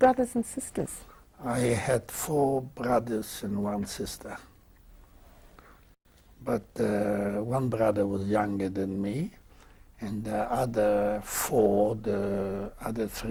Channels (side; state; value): both; identical; correlation 1.00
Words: and sisters? I had 4 brothers and 1 sister. But one brother was younger than me, And the other four, the other